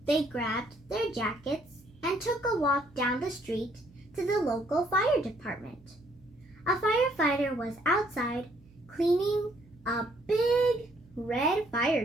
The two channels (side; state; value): right; noise; hum, 27 dB below the sound